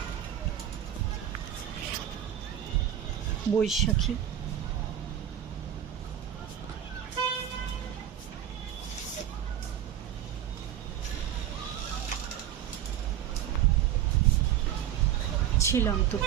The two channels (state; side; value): quieter; left; 10.6 dB